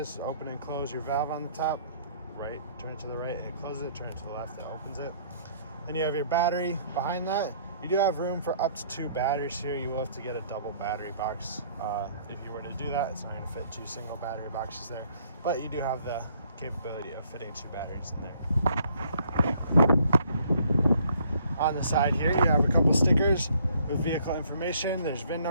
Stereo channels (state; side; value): inverted; both; correlation -0.63